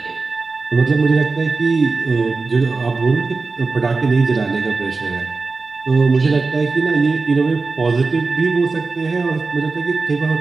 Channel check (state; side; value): quieter; left; 4.0 dB